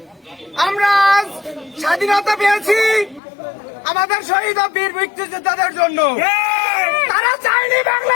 আমরা আজ স্বাধীনতা পেয়েছি আমাদের শহীদ ও বীর মুক্তিযোদ্ধাদের জন্য। তারা চায়নি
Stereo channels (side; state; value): right; drops out; at 3.2 s